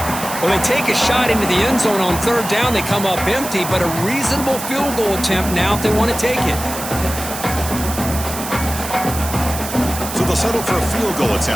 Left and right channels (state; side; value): noise; right; hiss, 8 dB below the sound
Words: Well, they take a shot into the end zone on 3rd down. They come up empty, but a reasonable field goal attempt now if they want to take it. So they'll settle for a field goal